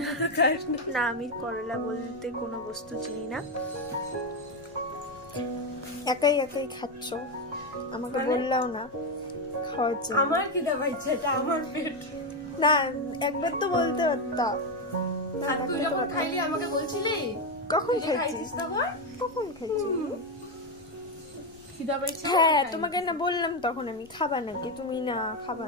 না, আমি করলা বলতে কোনো বস্তু চিনি না। একাই একাই খাচ্ছ, আমাকে বললাও না খাওয়ার জন্য। আমার কি দাবা ইচ্ছা, এটা আমার পেট। না, একবার তো বলতে পারতা। তুই যখন খাইলি আমাকে বলছিলি? কখন খাইছিস? কখন খাইছিস? হ্যাঁ, তোমাকে না বললাম তখন আমি খাবা নাকি, তুমি না খাবা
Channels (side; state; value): left; noise; rumble, 25 dB below the sound